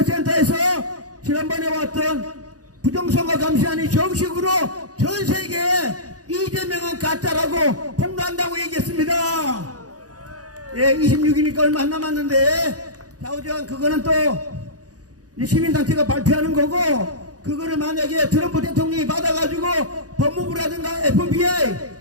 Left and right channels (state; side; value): late; left; 0.67 ms